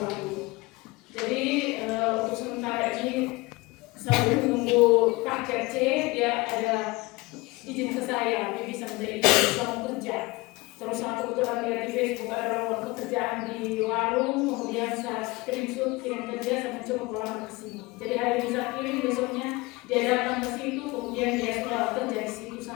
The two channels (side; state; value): right; quieter; 22.8 dB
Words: dulu. Jadi untuk sementara ini sambil menunggu paket C, dia ada izin ke saya, dia bisa menjadi suami kerja. Terus aku kebetulan lihat di Facebook ada lowongan pekerjaan di warung, kemudian saya screenshot kirim ke dia, saya coba pulang ke sini. Jadi hari ini saya kirim, besoknya dia datang ke situ, kemudian dia sudah kerja di situ